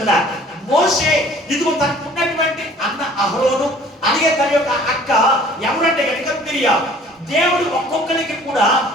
మోషే ఇదిగో తనకు ఉన్నటువంటి అన్న అహరోను, అలాగే తన యొక్క అక్క ఎవరంటే కనుక మిరియాము. దేవుడు ఒక్కొక్కరికి కూడా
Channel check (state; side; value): normal; both; correlation 0.52